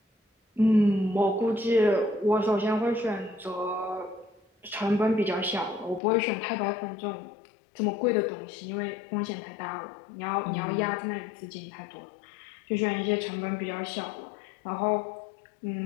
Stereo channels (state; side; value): drops out; right; at 6.0 s